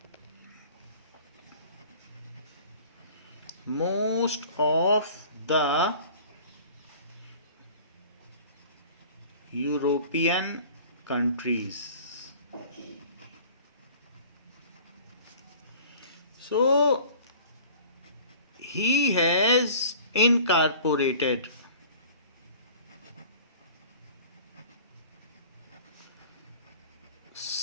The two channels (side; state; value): both; inverted; correlation -0.45